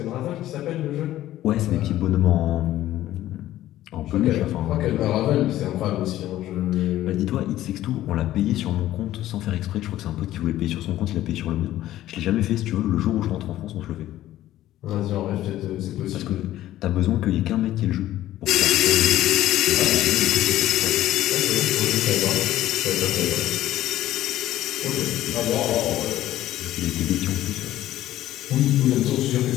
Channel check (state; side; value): quieter; right; 14.0 dB